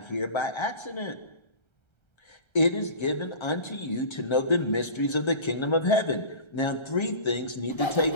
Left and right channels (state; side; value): late; right; 1.3 ms